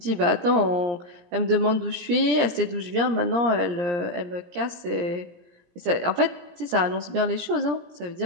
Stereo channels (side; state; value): left; late; 17 ms